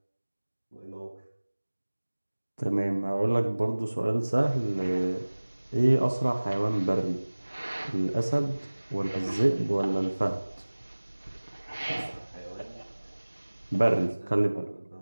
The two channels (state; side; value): inverted; both; correlation -1.00